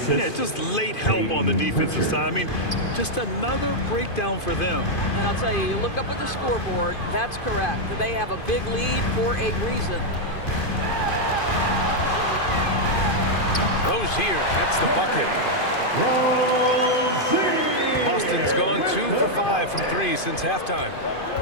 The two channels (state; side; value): late; right; 2.5 ms